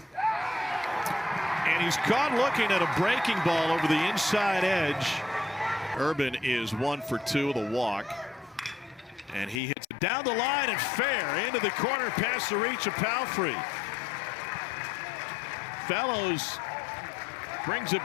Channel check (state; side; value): drops out; right; at 9.6 s